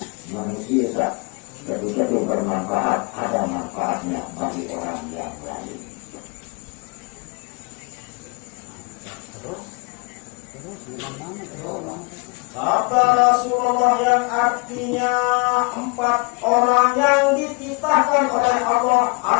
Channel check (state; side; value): quieter; right; 31.5 dB